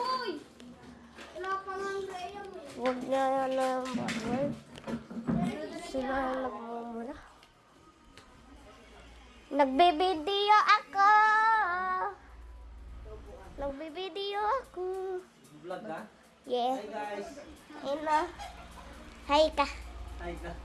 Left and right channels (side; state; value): both; identical; correlation 1.00